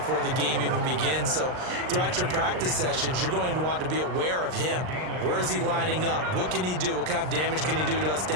the game even begins. So throughout your practice sessions, you're going to want to be aware of him. Where is he lining up? What can he do? What kind of damage can he do to us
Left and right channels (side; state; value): left; late; 39 ms